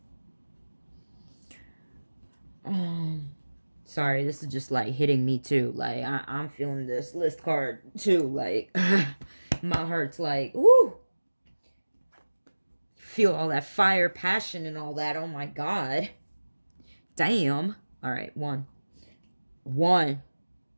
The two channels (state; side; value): inverted; both; correlation -1.00